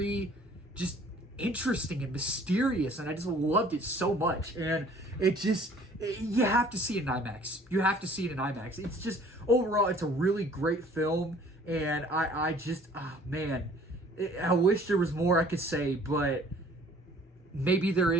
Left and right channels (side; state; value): both; normal; correlation 0.54